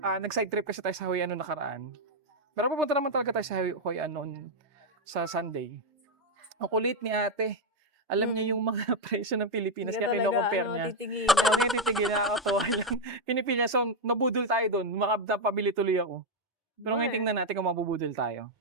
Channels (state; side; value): normal; both; correlation 0.03